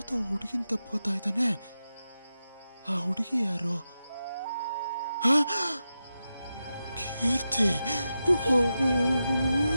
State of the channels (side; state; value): both; inverted; correlation -0.90